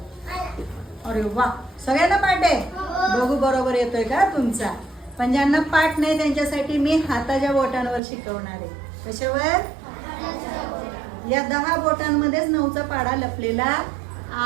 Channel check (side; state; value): left; drops out; at 8.0 s